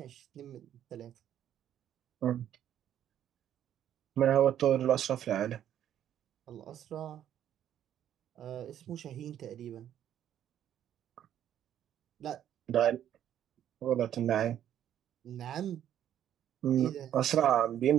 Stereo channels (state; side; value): quieter; left; 10.7 dB